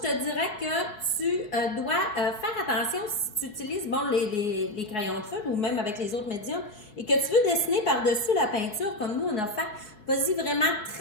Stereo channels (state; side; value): late; right; 4.7 ms